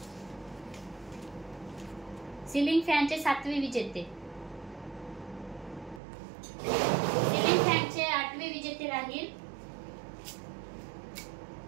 सिलिंग फॅनचे सातवे विजेते. सिलिंग फॅनचे आठवे विजेते राहील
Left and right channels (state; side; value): drops out; left; at 6.0 s